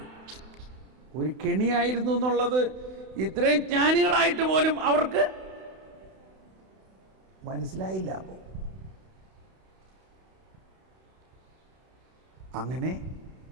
ഒരു കെണിയായിരുന്നു എന്നുള്ളത് ഇത്രയും ജ്ഞാനികളായിട്ട് പോലും അവർക്ക് മനസ്സിലായില്ല. അപ്പോൾ അങ്ങനെ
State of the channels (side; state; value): left; late; 32 ms